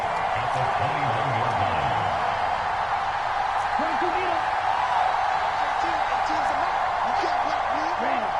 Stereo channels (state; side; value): identical; both; correlation 1.00